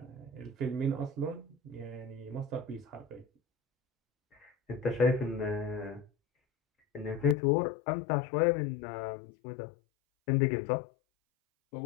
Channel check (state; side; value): drops out; right; at 7.4 s